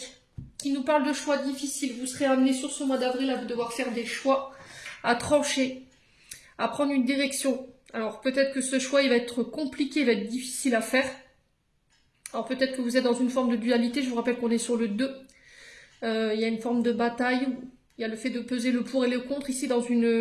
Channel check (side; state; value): both; identical; correlation 1.00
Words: qui nous parle de choix difficiles. Vous serez amené sur ce mois d'avril à devoir faire des choix, à trancher, à prendre une direction. Alors, peut-être que ce choix, il va être compliqué, il va être difficile à faire. Alors, peut-être que vous êtes dans une forme de dualité. Je vous rappelle qu'on est sur le 2. Il y a une forme de bataille. Il y a le fait de peser le pour et le contre ici dans